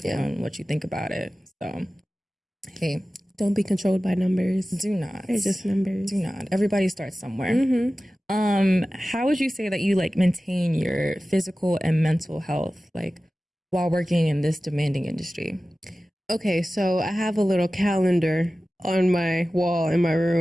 on what you think about it. So, hey. Don't be controlled by numbers. Do not. They're just numbers. Do not. Everybody starts somewhere. How would you say that you like maintain your physical and mental health, like while working in this demanding industry? Okay, so I have a little calendar on my wall in my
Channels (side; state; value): both; normal; correlation 0.96